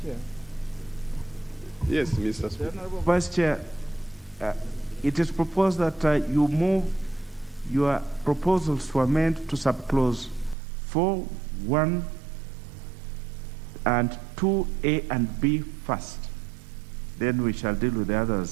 Chair. Yes, Mr. Speaker. The Honorable Vice Chair, it is proposed that you move your proposals to amend to subclause 4, 1, and 2, A and B first. Then we shall deal with the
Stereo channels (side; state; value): left; drops out; at 10.6 s